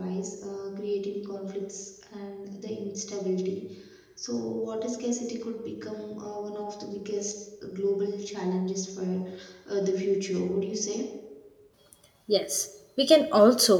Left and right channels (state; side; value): identical; both; correlation 1.00